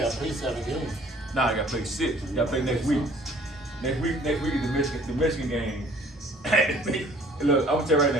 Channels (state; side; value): normal; both; correlation 0.55